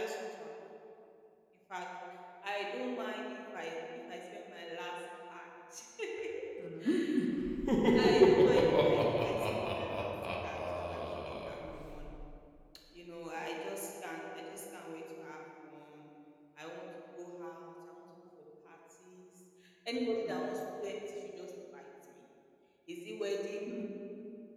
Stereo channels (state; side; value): identical; both; correlation 1.00